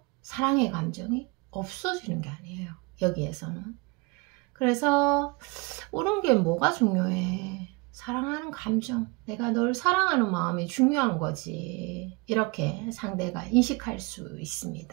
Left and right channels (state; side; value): quieter; left; 27.9 dB